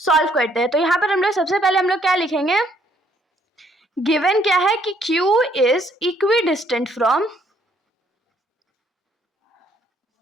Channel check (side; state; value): both; normal; correlation 0.66